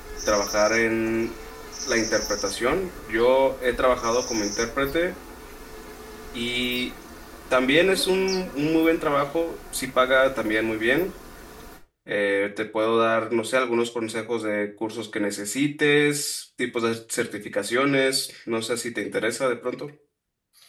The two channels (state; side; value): identical; both; correlation 1.00